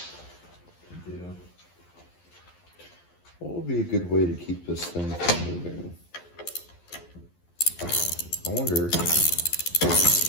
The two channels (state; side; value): late; right; 11 ms